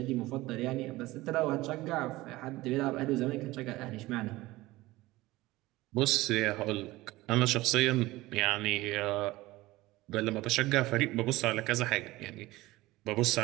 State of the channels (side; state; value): left; quieter; 18.8 dB